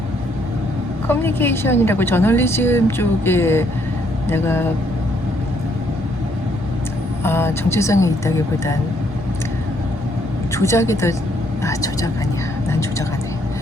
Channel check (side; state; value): both; normal; correlation 0.69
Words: 커뮤니케이션이라고 저널리즘 쪽에 내가 정체성이 있다기보단 조작이 더 조작 아니야 난 조작 안 해